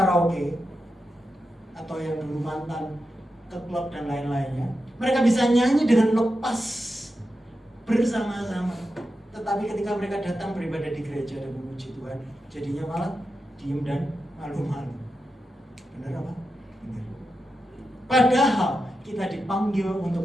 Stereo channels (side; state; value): both; normal; correlation 0.89